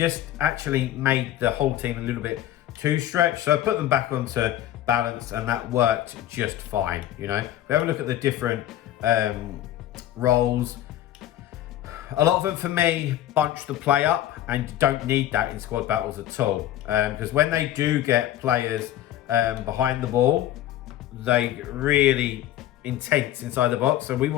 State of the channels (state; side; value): quieter; right; 12.8 dB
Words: actually made the whole team a little bit too stretched. So I put them back onto balance, and that worked just fine. You know, we have a look at the different roles. A lot of them, for me, bunch the play up, and you don't need that in squad battles at all. Because when they do get players behind the ball, they really intense inside the box. So we